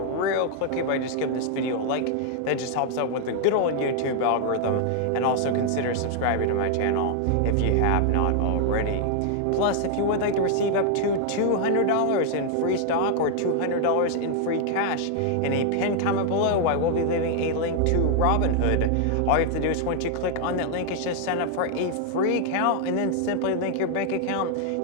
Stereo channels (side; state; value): both; different; correlation 0.00